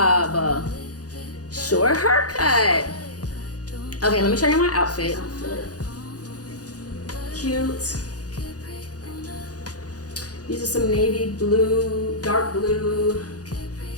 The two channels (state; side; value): late; right; 0.68 ms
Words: Short haircut. Okay, let me show you my outfit. Cute. These are some navy blue, dark blue,